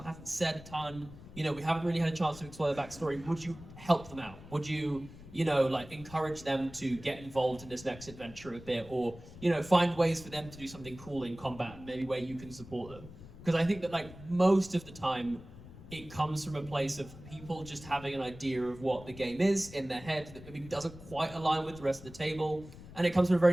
hasn't said a ton, we haven't really had a chance to explore their backstory. Would you help them out? Would you, like encourage them to get involved in this next adventure a bit, or, find ways for them to do something cool in combat, maybe where you can support them? Because I think that like most of the time it comes from a place of people just having an idea of what the game is in their head that maybe doesn't quite align with the rest of the table. And it comes from a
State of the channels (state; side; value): noise; left; rumble, 17 dB below the sound